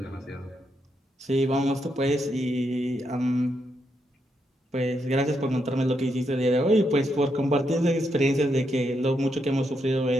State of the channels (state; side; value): normal; both; correlation 0.80